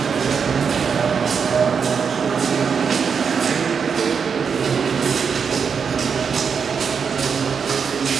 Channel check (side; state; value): left; quieter; 6.3 dB